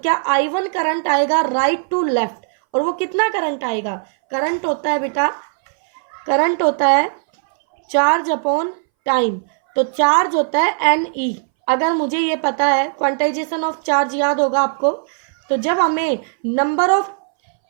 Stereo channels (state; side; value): silent; left; 63 dB below the other